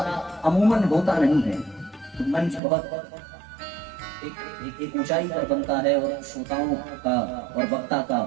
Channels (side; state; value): left; drops out; at 2.6 s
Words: अमूमन होता नहीं है। तो मंच बहुत एक ऊंचाई पर बनता है, और श्रोताओं का और वक्ता का